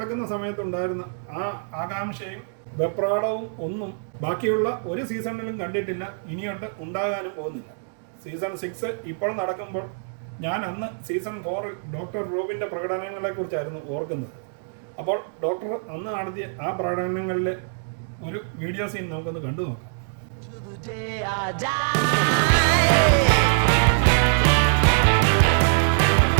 സമയത്തുണ്ടായിരുന്ന ആ ആകാംക്ഷയും വെപ്രാളവും ഒന്നും ബാക്കിയുള്ള ഒരു സീസണിലും കണ്ടിട്ടില്ല, ഇനിയോട്ട് ഉണ്ടാകാനും പോകുന്നില്ല. സീസൺ 6 ഇപ്പോൾ നടക്കുമ്പോൾ ഞാൻ അന്ന് സീസൺ 4 ഡോക്ടർ റോബിൻ്റെ പ്രകടനങ്ങളെക്കുറിച്ചായിരുന്നു ഓർക്കുന്നത്. അപ്പോൾ ഡോക്ടർ അന്ന് നടത്തിയ ആ പ്രകടനങ്ങളിലെ ഒരു വീഡിയോ സീൻ നമുക്കൊന്ന് കണ്ടു നോക്കാം.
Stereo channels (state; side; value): silent; left; digital silence